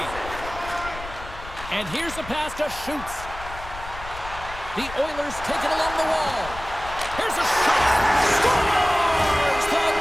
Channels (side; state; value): left; noise; rumble, 13 dB below the sound